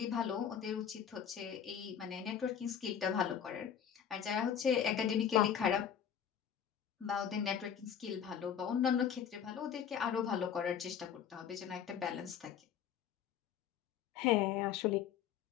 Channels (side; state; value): right; quieter; 8.6 dB